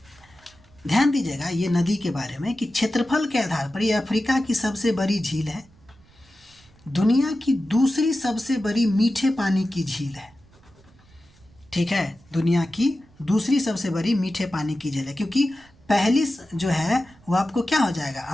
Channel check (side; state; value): right; noise; rumble, 28 dB below the sound